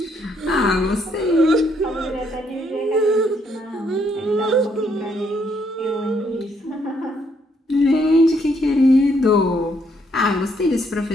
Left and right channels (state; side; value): normal; both; correlation 0.71